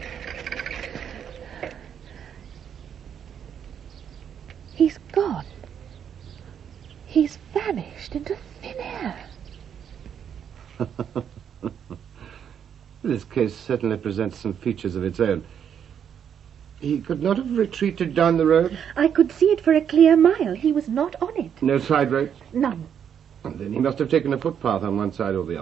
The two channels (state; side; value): quieter; left; 8.4 dB